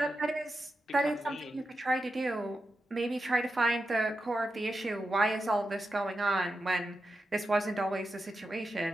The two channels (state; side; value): normal; both; correlation 0.89